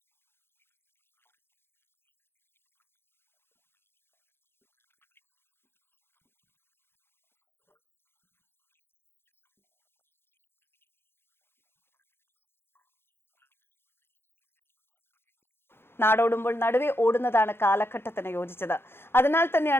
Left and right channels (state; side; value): late; right; 0.11 ms